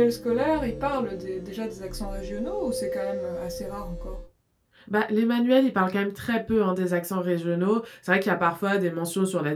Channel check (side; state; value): both; identical; correlation 1.00